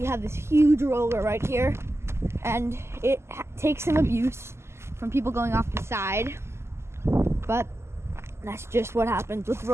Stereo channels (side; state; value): left; late; 0.13 ms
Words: have this huge roller right here, and it takes some abuse from people going off the side, but that's just what happens with